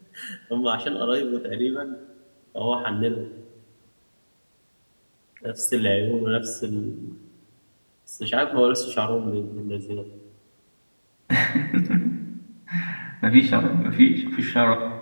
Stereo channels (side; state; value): both; inverted; correlation -1.00